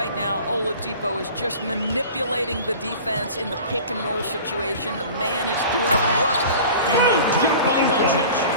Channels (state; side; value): inverted; both; correlation -0.40